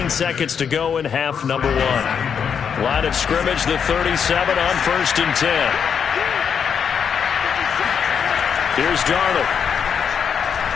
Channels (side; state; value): right; quieter; 7.2 dB